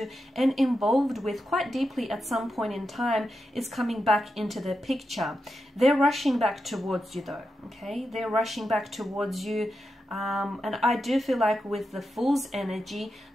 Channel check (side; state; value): both; normal; correlation 0.88